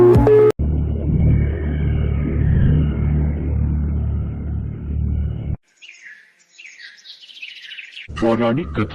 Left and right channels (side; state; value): both; identical; correlation 1.00